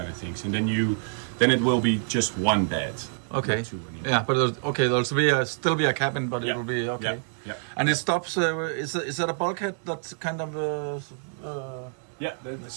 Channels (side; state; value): left; silent; digital silence